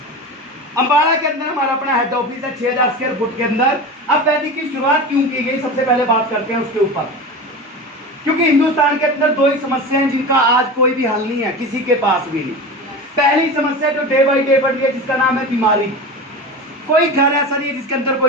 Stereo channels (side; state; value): both; normal; correlation 0.28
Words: अंबाला के अंदर हमारा अपना हेड ऑफिस है 6000 स्क्वायर फुट के अंदर। अब वैदिक की शुरुआत क्यों की गई, सबसे पहले बात करते हैं उसके ऊपर। क्योंकि हिंदुस्तान के अंदर दो ही समस्या हैं जिनका आज कोई भी हल नहीं है, किसी के पास भी नहीं। पहली समस्या जो डे बाई डे बढ़ रही है जिसका नाम है बीमारी। कोई घर ऐसा नहीं है जिसके अंदर